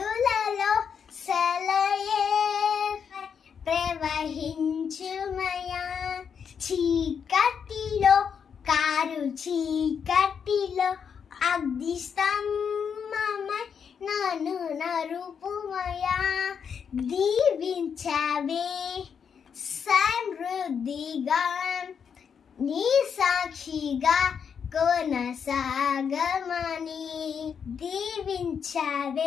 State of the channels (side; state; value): right; quieter; 7.0 dB